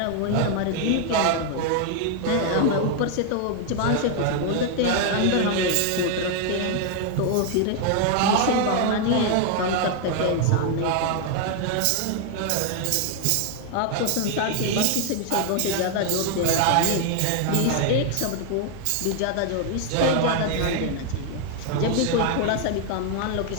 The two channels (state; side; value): different; both; correlation 0.00